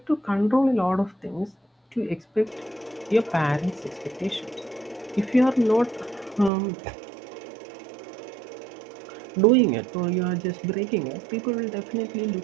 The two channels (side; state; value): left; drops out; at 6.5 s